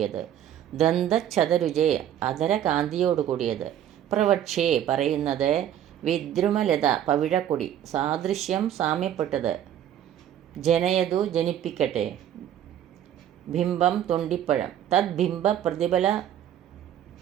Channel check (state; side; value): quieter; left; 10.7 dB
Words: ദന്തച്ഛതരുജേ അധരകാന്തിയോട് കൂടിയത്, പ്രവക്ഷേ പറയുന്നത്, വിദ്രുമലത പവിഴക്കൊടി, സാദൃശ്യം സാമ്യപ്പെട്ടത്, ജനയതു ജനിപ്പിക്കട്ടെ, ബിംബം തൊണ്ടിപ്പഴം, തദ്ബിംബ പ്രതിഫല